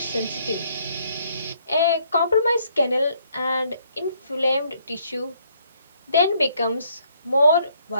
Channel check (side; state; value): both; inverted; correlation -0.68